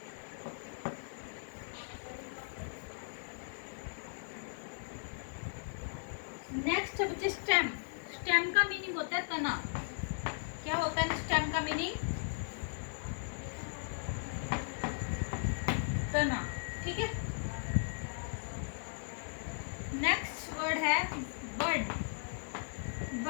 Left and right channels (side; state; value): right; silent; digital silence